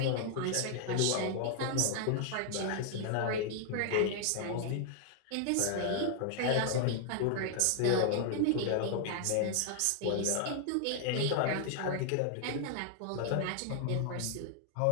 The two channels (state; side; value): different; both; correlation 0.00